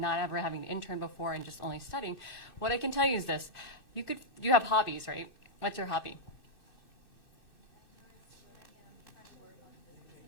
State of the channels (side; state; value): right; late; 2.6 ms